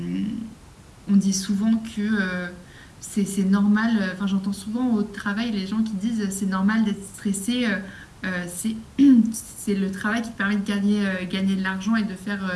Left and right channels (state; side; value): identical; both; correlation 1.00